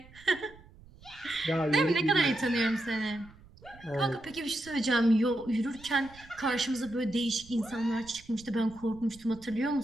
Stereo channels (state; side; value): noise; right; rumble, 22 dB below the sound